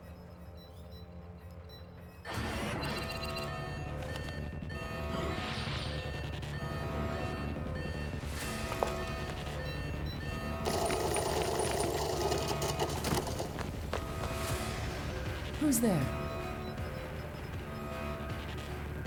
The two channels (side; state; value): both; identical; correlation 1.00